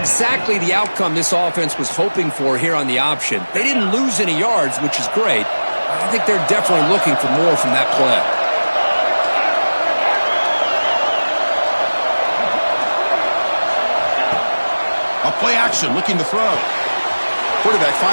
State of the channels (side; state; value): both; inverted; correlation -1.00